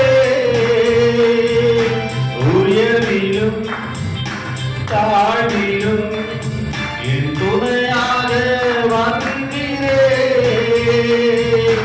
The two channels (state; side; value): identical; both; correlation 1.00